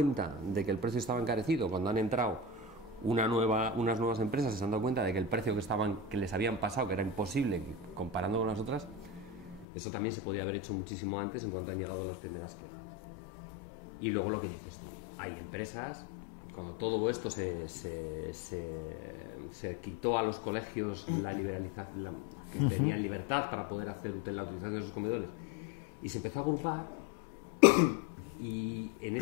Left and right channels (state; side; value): drops out; right; at 9.7 s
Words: de que el precio estaba encarecido cuando han entrado unas nuevas empresas se han dado cuenta de que el precio que les habían pasado, que era imposible comparando con las otras, eso también se podía haber hecho muchísimo antes en cuanto han llegado las primeras quejas. Y luego lo que dices tú, hay empresas, cuando todo esto se quitó a los colegios la liberalización, que tenían libertad para poder hacer la utilización de esos comedores, y se empezó a agrupar, y